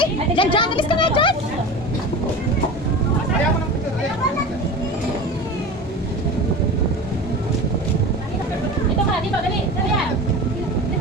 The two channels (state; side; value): normal; both; correlation 0.32